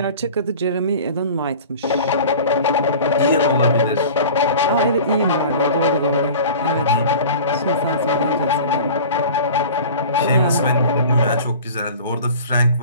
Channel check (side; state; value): both; inverted; correlation -0.40